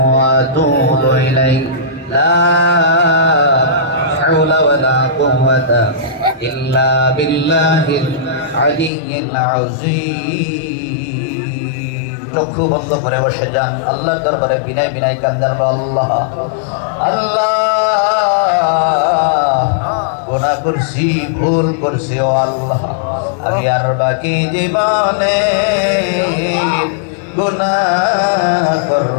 আতুবু ইলাইহি লা হাওলা ওয়ালা কুওয়াতা ইল্লা বিল্লাহিল আলিয়্যিল আযীম। চক্ষু বন্ধ করে বসে যান, আল্লাহর দরবারে বিনয় বিনয় কান্দার আল্লাহ আল্লাহ গুনাহ করছি, ভুল করছি ও আল্লাহ, আমি আর বাকি জীবনে গুনাহ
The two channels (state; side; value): drops out; right; at 8.9 s